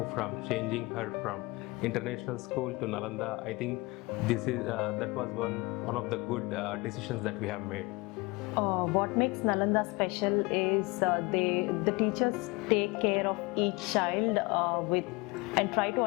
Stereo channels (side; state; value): right; quieter; 24.5 dB